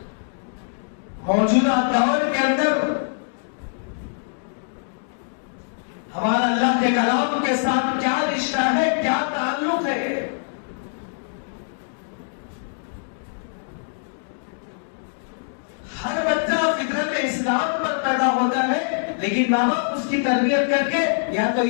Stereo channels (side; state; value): right; silent; digital silence